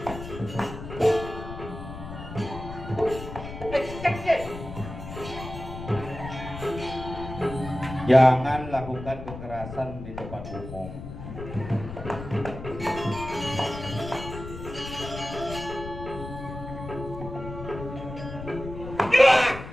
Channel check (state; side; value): noise; left; rumble, 10 dB below the sound